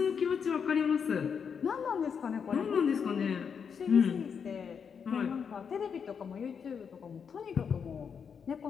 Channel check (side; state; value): right; quieter; 6.7 dB